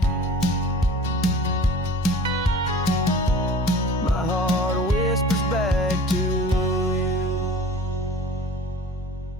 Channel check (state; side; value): normal; both; correlation 0.42